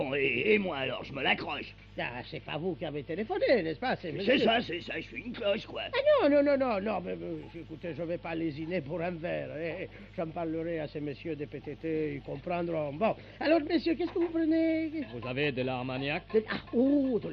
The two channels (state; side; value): identical; both; correlation 1.00